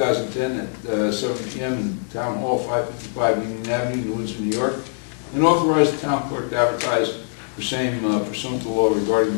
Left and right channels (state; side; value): silent; right; 64 dB below the other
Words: at 7 p.m. in Town Hall, 555 Union Avenue, New Windsor, New York, and authorize the town clerk to advertise for same pursuant to law regarding